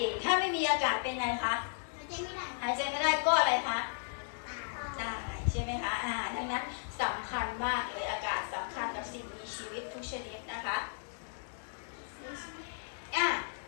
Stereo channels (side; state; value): right; silent; digital silence